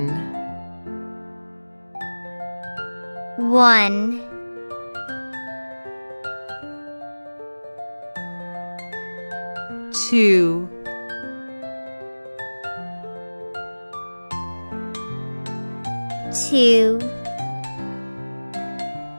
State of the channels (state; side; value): inverted; both; correlation -1.00